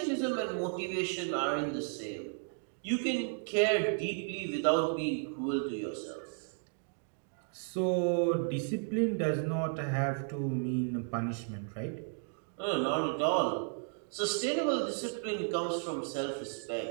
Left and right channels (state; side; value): silent; left; 55 dB below the other